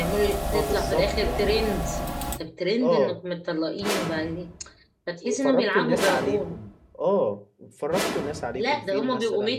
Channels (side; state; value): both; identical; correlation 1.00